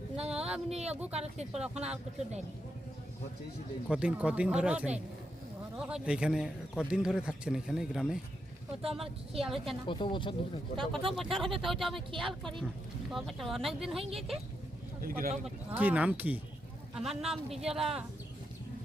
না আপনি আগু কারো তিরপল এখন আর কিছু দেয়নি কতদিন ধরে আছেন ঘরও হয় না এইখানে? কতদিন ধরে থাকছেন এখানে গ্রামে? ও তো আমার খেয়াল হচ্ছে না কত বছর ধরে কত বছর হবে তো ওটা আমি খেয়াল করি কত বছর অনেক দিন হয়ে গেছে কি নাম কি? আমার নাম বিজলা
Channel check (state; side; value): normal; both; correlation 0.83